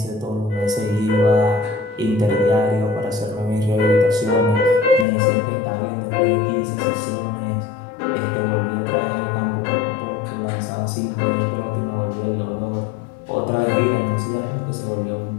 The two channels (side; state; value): right; drops out; at 5.1 s